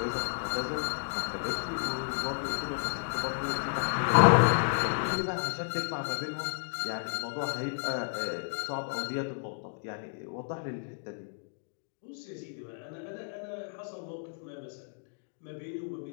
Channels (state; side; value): silent; right; digital silence